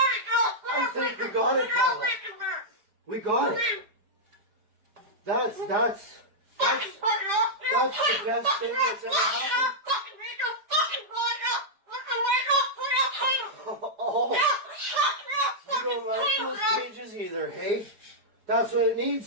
I think we got it, Paula. We got it. That's the best thing that's ever happened. Oh, you don't like those cages either, hey? That's what it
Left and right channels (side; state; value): left; late; 5.0 ms